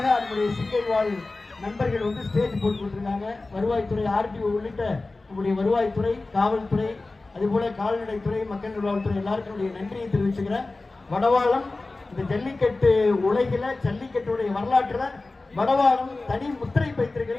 நம்முடைய சிங்கை வாழ் நண்பர்கள் வந்து ஸ்டேஜ் போட்டு கொடுத்துருக்காங்க. வருவாய்த்துறை, ஆர்டிஓ உள்ளிட்ட நம்முடைய வருவாய்த்துறை, காவல்துறை, அதுபோல கால்நடைத்துறை, மக்கள் நல்வாழ்வுத்துறை எல்லாருக்கும் நன்றியை தெரிவிச்சுக்கிறேன். வடவாளம் இந்த ஜல்லிக்கட்டு உலகில ஜல்லிக்கட்டுடைய வரலாற்றுல வடவாளம் தனி முத்திரை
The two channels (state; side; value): quieter; right; 3.3 dB